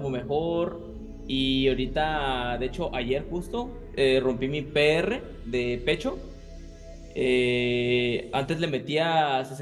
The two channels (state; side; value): identical; both; correlation 1.00